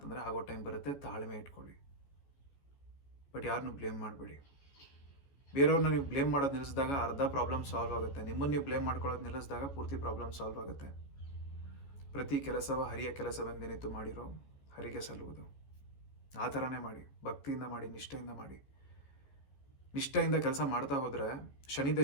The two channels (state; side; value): late; right; 14 ms